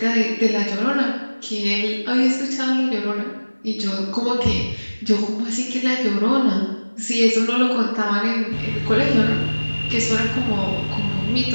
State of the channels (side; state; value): both; inverted; correlation -1.00